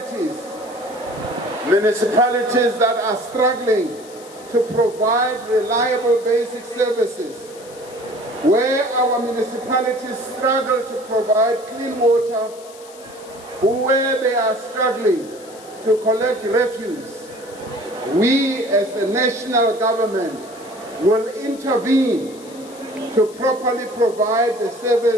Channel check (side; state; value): left; noise; hiss, 21 dB below the sound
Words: that are struggling to provide reliable basic services. Where our municipalities struggle to provide clean water, where they are struggling to collect refuse, we as the national government will intervene to properly provide the